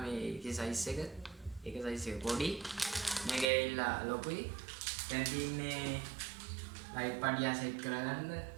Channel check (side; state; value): left; drops out; at 3.5 s